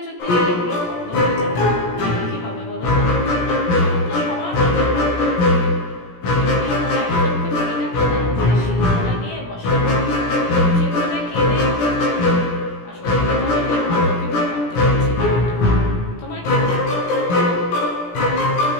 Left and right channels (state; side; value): late; right; 17 ms